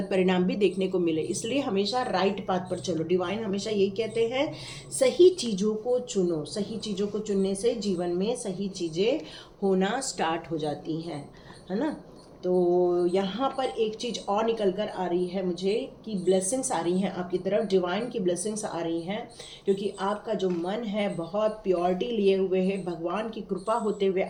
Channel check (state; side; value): identical; both; correlation 1.00